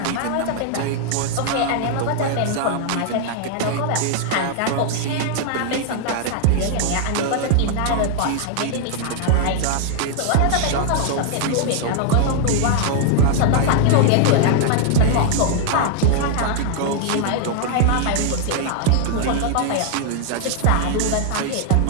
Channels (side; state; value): both; different; correlation 0.00